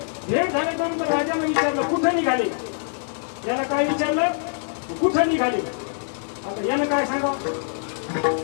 भेट झाल्यानंतर राजाने विचारलं कुठं निघाले. याला काय विचारलं कुठं निघाले. आता यानं काय सांगावं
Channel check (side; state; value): right; silent; digital silence